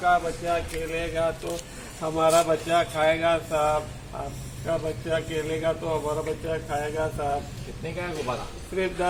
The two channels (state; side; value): identical; both; correlation 1.00